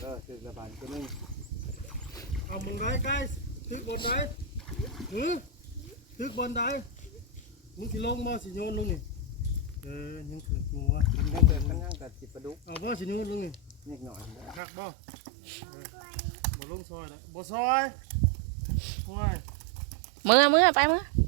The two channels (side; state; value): left; drops out; at 14.6 s